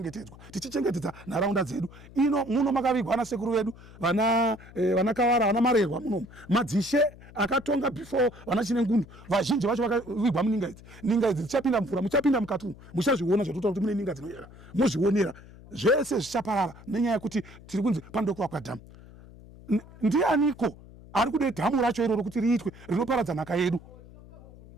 Tichichengetedza nharaunda dzedu. Ino muno makavigwa na sekuru vedu vana Kawara, vana Marerwa muno. Madzishe akatonga before vana Chinengundu. Vazhinji vacho vakavigwa muninga idzi. Ninga idzi dzichapinda mvura, muchapinda mukati. Muchazviona zvatotaura kuti mune ninga dzinoyera. Muzvionera. Zvese zvichaparara nenyaya yekuti tiri kunzi pandokuvakwa dhamu. Ndianiko ari kude dhamu racho iroro kuti riitwe rinoparadza nhaka yedu?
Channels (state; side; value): noise; left; hum, 20 dB below the sound